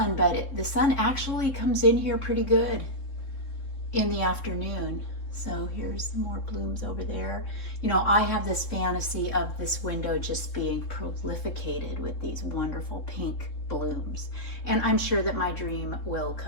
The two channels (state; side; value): late; right; 3.7 ms